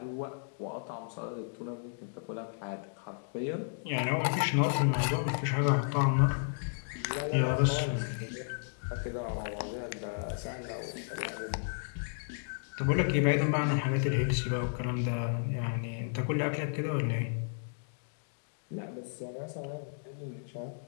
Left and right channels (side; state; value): right; silent; digital silence